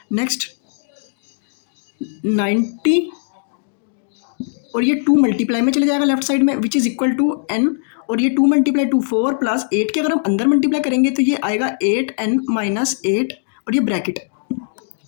नेक्स्ट 90 और ये 2 मल्टीप्लाई में चले जाएगा लेफ्ट साइड में which is equal to n, और ये 2 मल्टीप्लाई 2 4 प्लस 8 के अगर हम अंदर मल्टीप्लाई करेंगे तो ये आएगा 8n माइनस 8 और ये ब्रैकेट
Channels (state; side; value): silent; right; digital silence